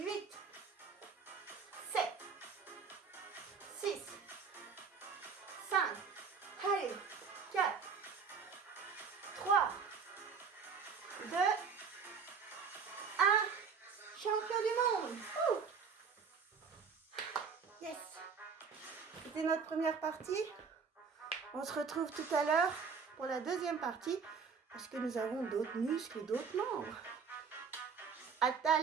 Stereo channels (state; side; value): quieter; left; 5.9 dB